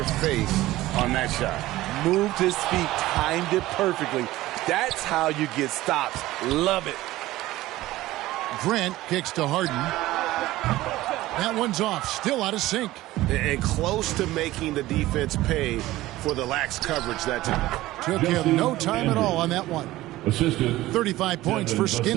face on that shot. Moved his feet, timed it perfectly. That's how you get stops. Love it. Grant kicks to Harden. That one's off. Still out of sync. And close to making the defense pay for the lax coverage that time. Took him no time at all on that one. Assisted 35 points for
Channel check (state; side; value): quieter; left; 16.9 dB